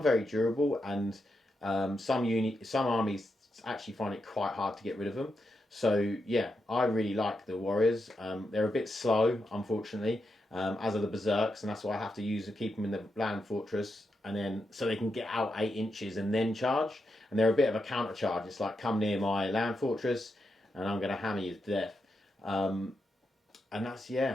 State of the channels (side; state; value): both; normal; correlation 0.85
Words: very durable, and some armies actually find it quite hard to get rid of them. So yeah, I really like the warriors. They're a bit slow, unfortunately, as are the berserks, and that's why I have to keep them in the land fortress, and then so they can get out 8 inches and then charge. And they're a bit of a counter charge. It's like, come near my land fortress, and I'm going to hammer you to death. And that's,